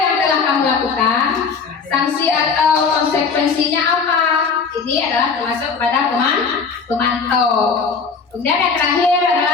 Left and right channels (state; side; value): quieter; right; 5.2 dB